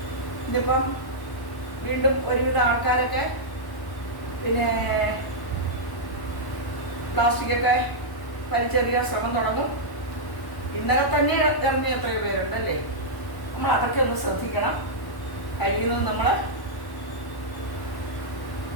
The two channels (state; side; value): late; right; 1.1 ms